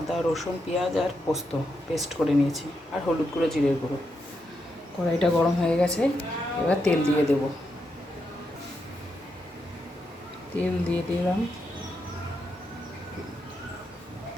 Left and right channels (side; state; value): both; normal; correlation 0.83